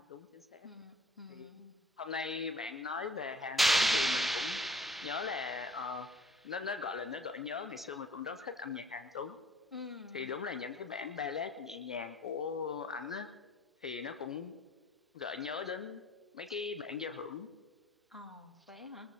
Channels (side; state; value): both; normal; correlation 0.52